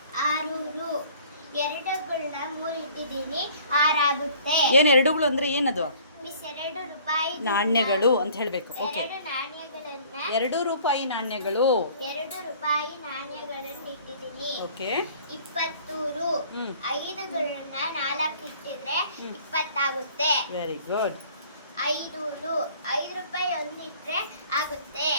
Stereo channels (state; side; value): inverted; both; correlation -0.53